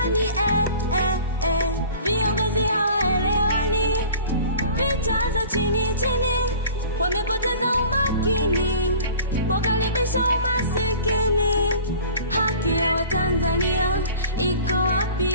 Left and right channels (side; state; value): both; inverted; correlation -0.44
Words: Viongozi hawaelewani, vita za chini chini, wamepoteza umakini, wakaribisha umasikini. Haki ya Watanzania iko wapi?